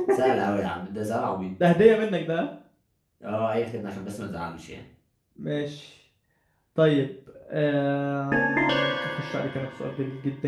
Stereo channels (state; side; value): identical; both; correlation 1.00